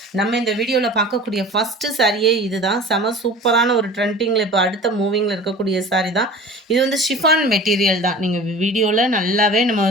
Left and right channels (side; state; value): both; normal; correlation 0.40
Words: நம்ம இந்த வீடியோவில் பார்க்கக்கூடிய ஃபஸ்ட்டு சாரியே இது தான். செம சூப்பரான ஒரு ட்ரெண்டிங்கில் இப்போ அடுத்த மூவிங்கில் இருக்கக்கூடிய சாரி தான். இது வந்து ஷிஃபான் மெட்டீரியல் தான். நீங்கள் வீடியோவில் நல்லாவே நம்ம